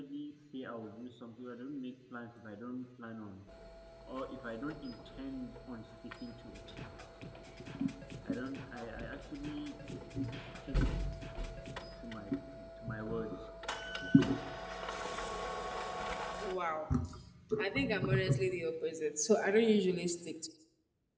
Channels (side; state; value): both; identical; correlation 1.00